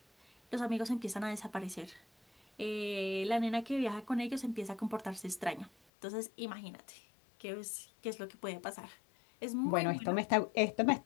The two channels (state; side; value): drops out; right; at 5.7 s